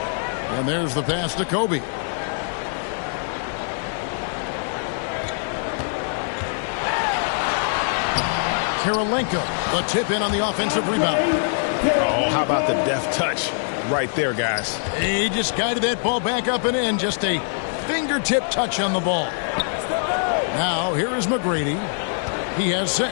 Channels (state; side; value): silent; right; 63 dB below the other